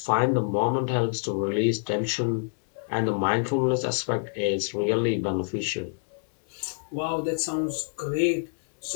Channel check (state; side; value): silent; right; digital silence